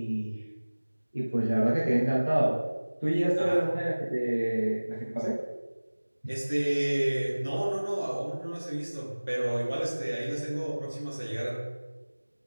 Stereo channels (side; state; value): both; inverted; correlation -1.00